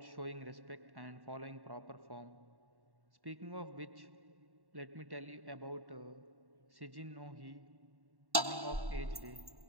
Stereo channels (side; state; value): left; late; 1.1 ms